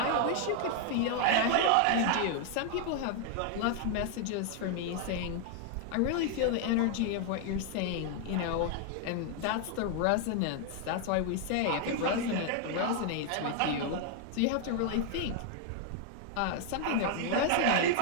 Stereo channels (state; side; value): different; both; correlation 0.00